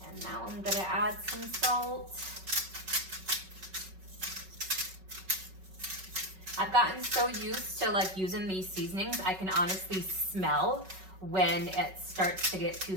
And now I'm gonna add some salt. I've gotten so used to like using these seasonings, I can honestly smell when it starts to get too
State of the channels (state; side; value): late; left; 5.3 ms